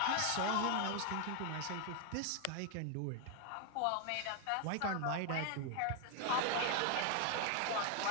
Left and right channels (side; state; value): both; different; correlation 0.00